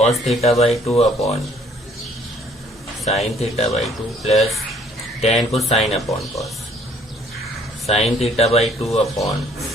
theta by two upon sine theta by two plus tan को sine upon cos, sign theta by two upon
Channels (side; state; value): both; normal; correlation 0.60